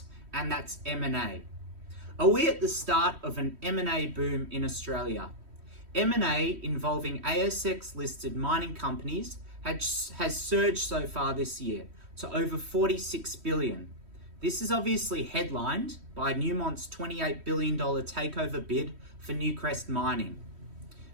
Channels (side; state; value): left; late; 3.1 ms